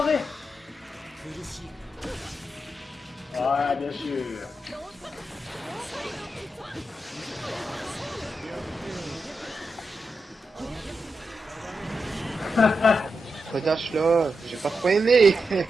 Ouais, bien sûr. Redash là, j'ai pas trop aimé.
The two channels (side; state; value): both; normal; correlation 0.87